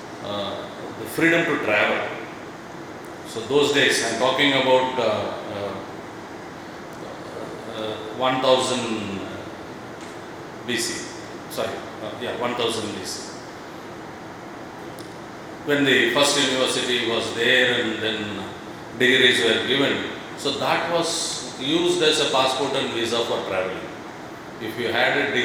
the freedom to travel. So those days, I'm talking about 1000 BC, 1000 BC. When the first university was there and then degrees were given, so that was used as a passport and visa for traveling. If you had a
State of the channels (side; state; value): both; identical; correlation 1.00